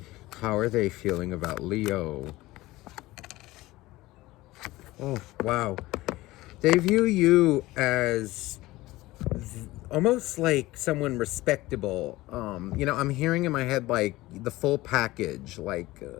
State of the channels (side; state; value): right; quieter; 18.5 dB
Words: How are they feeling about Leo? Oh, wow. They view you as almost like someone respectable. I'm hearing in my head like the full package, like,